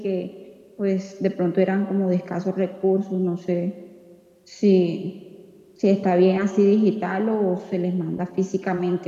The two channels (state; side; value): identical; both; correlation 1.00